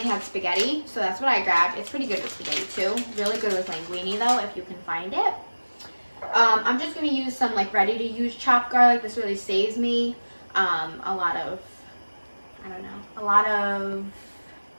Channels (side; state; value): both; inverted; correlation -1.00